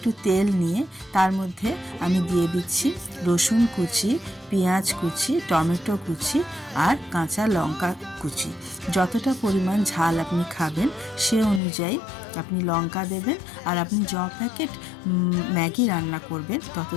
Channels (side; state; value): right; drops out; at 11.6 s